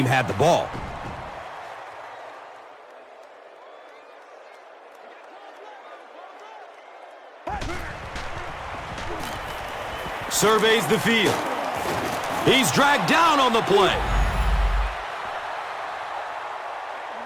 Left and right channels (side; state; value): both; identical; correlation 1.00